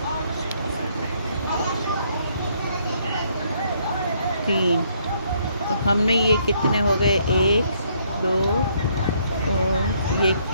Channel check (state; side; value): inverted; both; correlation -0.69